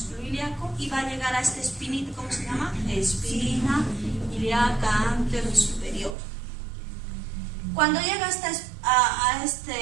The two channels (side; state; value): left; drops out; at 6.2 s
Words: ilíaco y va a llegar a esta espinita, ¿cómo se llama? Espina ilíaca anterior superior. Cuando llega a